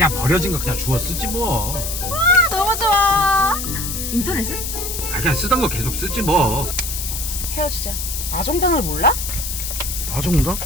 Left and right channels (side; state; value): left; noise; hiss, 5 dB below the sound